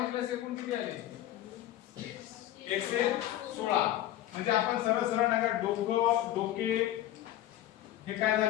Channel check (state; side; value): quieter; right; 13.5 dB